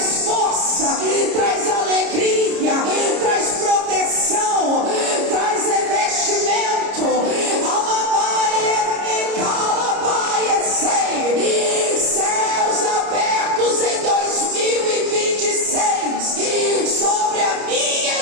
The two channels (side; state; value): left; late; 30 ms